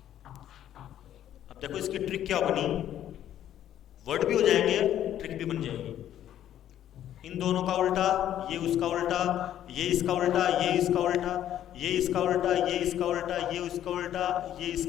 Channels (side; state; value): right; quieter; 11.3 dB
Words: अब देखो इसकी ट्रिक क्या बनी, वर्ड भी हो जाएंगे, ट्रिक भी बन जाएगी। इन दोनों का उल्टा, ये उसका उल्टा, ये इसका उल्टा, ये इसका उल्टा, ये इसका उल्टा, ये इसका उल्टा, ये उसका उल्टा, ये